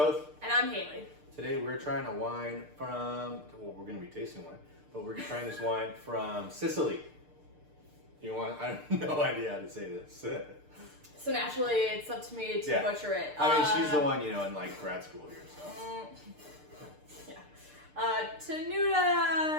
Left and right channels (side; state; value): left; late; 6.7 ms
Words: And I'm Haley. Today we're trying a wine from, well, we're going to be tasting wine, but we're trying this wine from Sicily. You want, I have no idea how to say this. So naturally, it's up to me to butcher it. I mean, she's the one, in like grad school here, so.